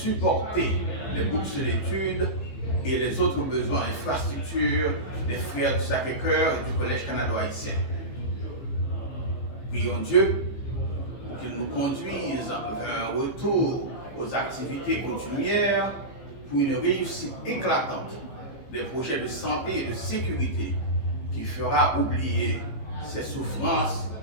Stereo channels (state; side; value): late; right; 15 ms